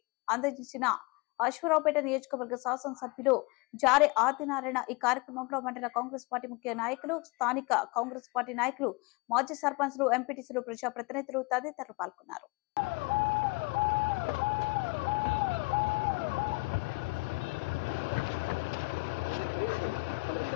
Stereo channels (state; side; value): quieter; right; 26.7 dB